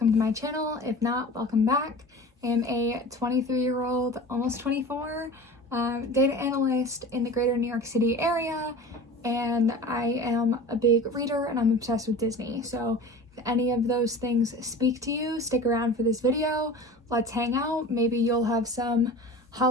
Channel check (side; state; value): both; normal; correlation 0.36